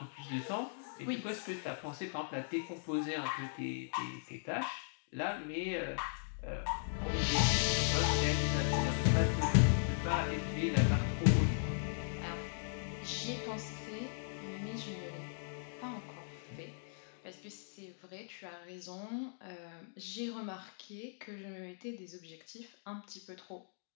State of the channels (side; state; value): right; silent; digital silence